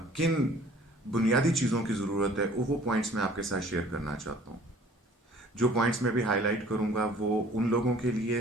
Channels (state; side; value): normal; both; correlation 0.52